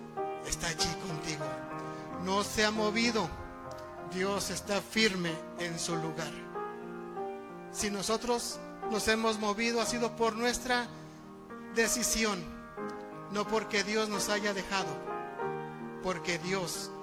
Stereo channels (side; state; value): both; identical; correlation 1.00